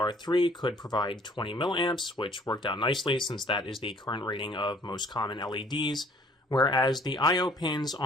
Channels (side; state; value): both; normal; correlation 0.57